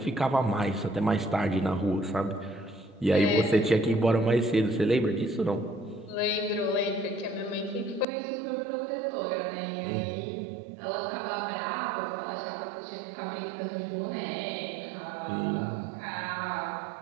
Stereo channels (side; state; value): left; drops out; at 8.1 s